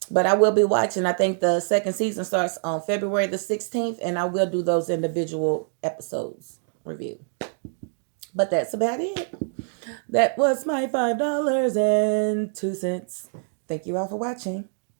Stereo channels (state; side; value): silent; left; digital silence